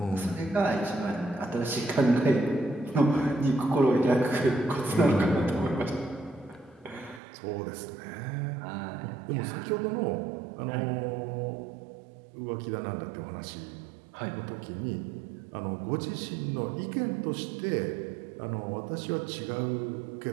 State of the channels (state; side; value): drops out; left; at 7.2 s